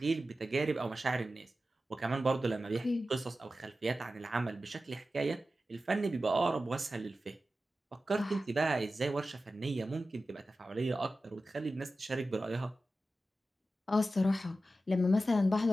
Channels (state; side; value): normal; both; correlation 0.93